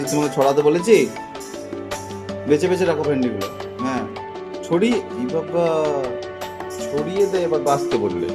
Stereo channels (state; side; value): identical; both; correlation 1.00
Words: তোমাকে, ছড়াতে বলেছি। বেছে বেছে রাখো ভেন্ডিগুলো। হ্যাঁ, ছড়িয়ে, ই বাবা, ছড়িয়ে দে, এবার বাছতে বললে।